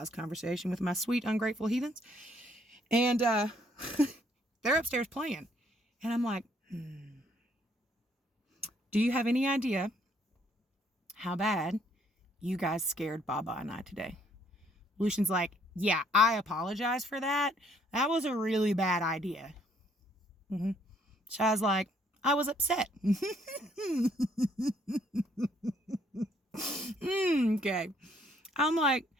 conversation with my sweet, ungrateful heathens. And they're upstairs playing. And I'm like, do you have any idea how bad you guys scared Baba and I today? Lucian's like, yeah, I apologize for that. That was a really bad idea. Shy's like, I was upset. Okay. I'm like,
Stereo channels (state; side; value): normal; both; correlation 0.66